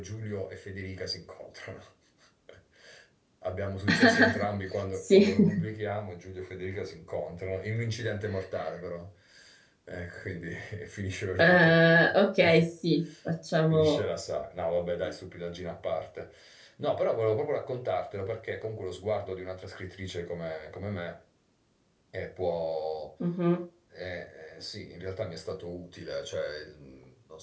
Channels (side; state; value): both; identical; correlation 1.00